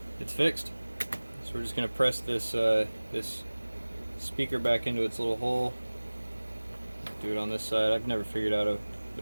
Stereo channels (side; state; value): both; inverted; correlation -1.00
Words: it's fixed. So we're just gonna press this this speaker back into its little hole. Do it on this side. I've never figured out